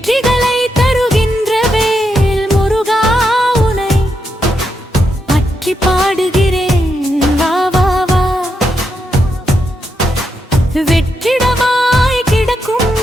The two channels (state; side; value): normal; both; correlation 0.83